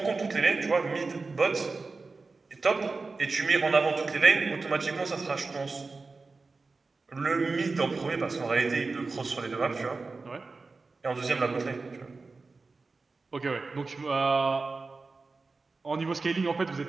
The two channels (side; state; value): left; quieter; 3.9 dB